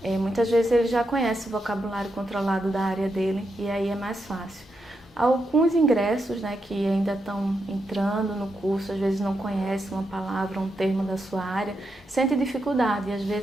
muitas vezes ele já conhece o vocabulário controlado da área dele e aí é mais fácil. Alguns ingressos, né, que ainda estão entrando no curso, às vezes não conhecem uma palavra, um termo da sua área, sente dificuldade e às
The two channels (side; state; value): both; normal; correlation 0.84